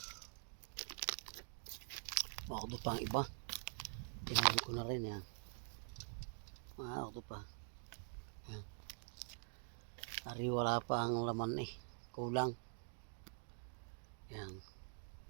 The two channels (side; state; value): left; silent; digital silence